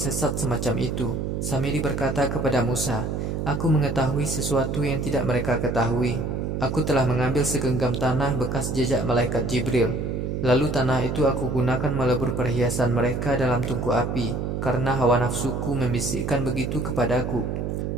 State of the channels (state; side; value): noise; right; hum, 2 dB below the sound